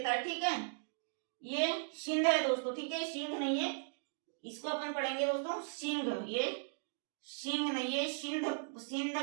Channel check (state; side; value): silent; left; digital silence